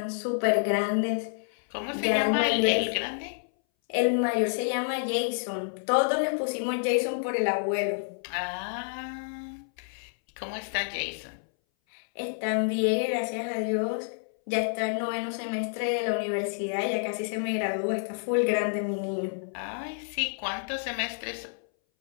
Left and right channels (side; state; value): right; silent; 59 dB below the other